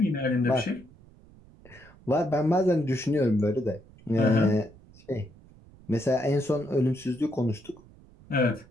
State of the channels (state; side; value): noise; right; rumble, 24 dB below the sound